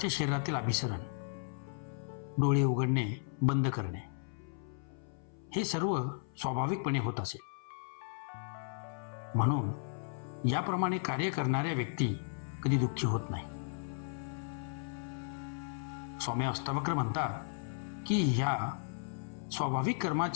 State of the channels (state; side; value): silent; right; 54 dB below the other